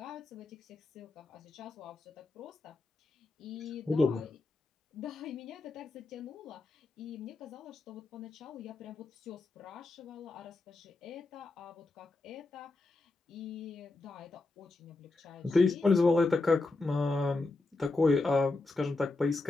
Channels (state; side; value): quieter; right; 3.3 dB